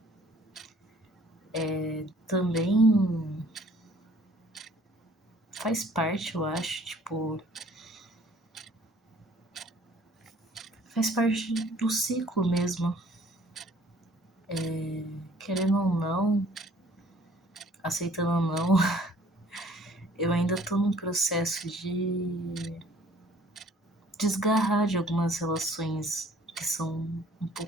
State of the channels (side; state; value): both; normal; correlation 0.56